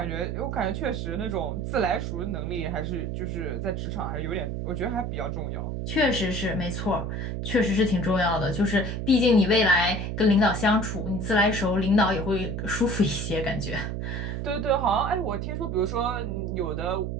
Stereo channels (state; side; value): noise; right; hum, 3 dB below the sound